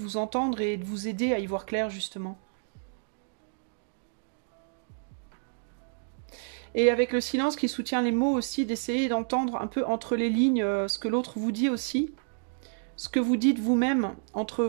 vous entendre et de vous aider à y voir clair, justement. Et avec le silence qui soutient les mots aussi, d'essayer d'entendre un peu entre les lignes ce que l'autre vous dit aussi. Ce que vous dites vous-même entre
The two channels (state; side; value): silent; left; digital silence